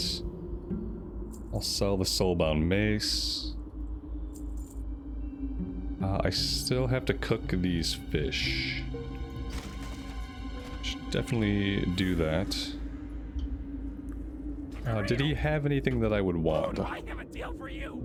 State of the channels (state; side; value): identical; both; correlation 1.00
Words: I'll sell the Soulbound mace. I still have to cook these fish. Should definitely do that. Did he have anything that I would want? Do I have a deal for you?